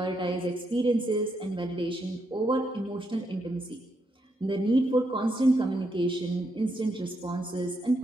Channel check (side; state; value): both; normal; correlation 0.80